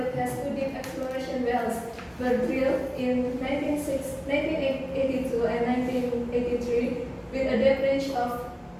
has two deep exploration wells were drilled in 1982 and 1983 with a depth range of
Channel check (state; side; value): identical; both; correlation 1.00